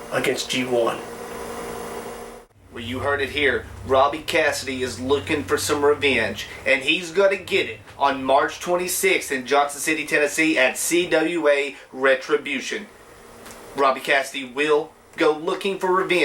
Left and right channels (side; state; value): both; identical; correlation 1.00